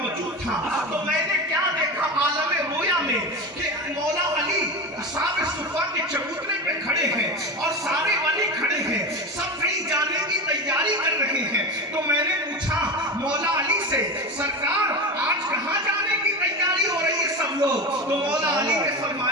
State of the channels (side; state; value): both; normal; correlation 0.24